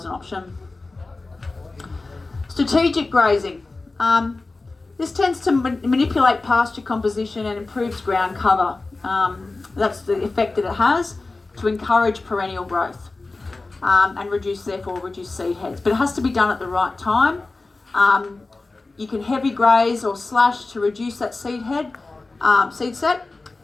an option. Strategic grazing. This tends to manipulate pasture composition and improves ground cover. That's the effect that it has, to encourage perennial growth and reduce seed heads. But it has to be done at the right time. You can heavy graze or slash to reduce that seed set,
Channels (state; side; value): quieter; right; 3.4 dB